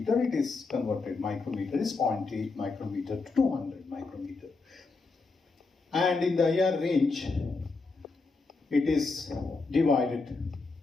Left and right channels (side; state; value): right; quieter; 4.0 dB